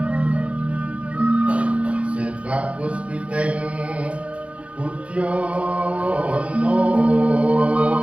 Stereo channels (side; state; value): left; late; 0.063 ms